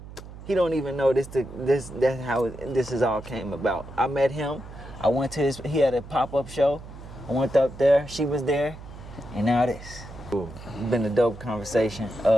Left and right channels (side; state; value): right; noise; hum, 15 dB below the sound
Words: He don't even know that's how this is all came about. I met him. I went to he had a pop-up show. I went up there. She was there, and now this. It's been a dope conversation.